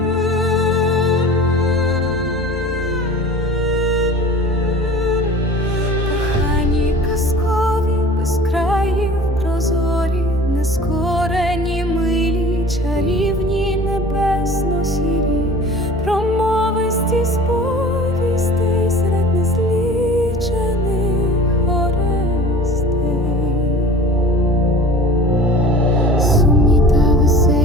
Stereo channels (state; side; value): normal; both; correlation 0.42